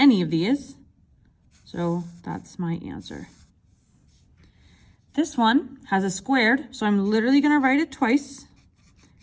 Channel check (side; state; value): both; identical; correlation 1.00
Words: of these, so that's my answer. This one has a squared, so I'm literally going to write it twice,